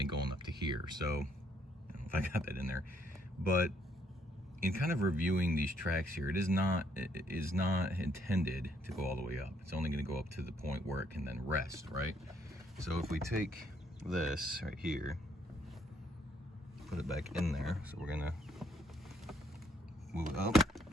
going up to here. So I don't know if I got that in there, but in kind of reviewing these tracks here, it is not intended to go all the way up. It's only going to go up to the point where it can then rest, right? So if we take this right here, put it back in there. So we're gonna move it up,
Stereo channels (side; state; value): both; normal; correlation 0.69